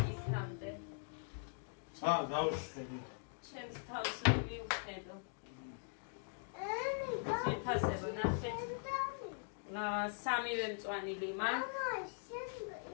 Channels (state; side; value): silent; right; digital silence